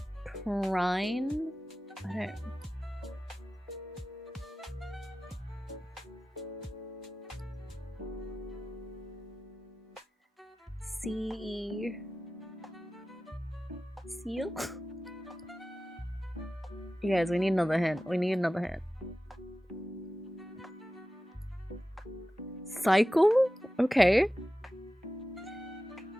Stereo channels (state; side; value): normal; both; correlation 0.95